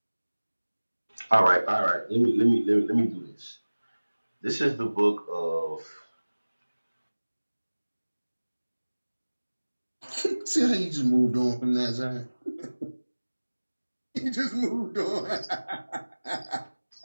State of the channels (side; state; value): both; inverted; correlation -1.00